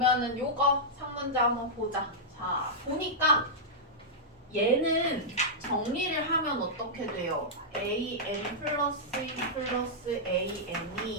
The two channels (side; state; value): both; normal; correlation -0.10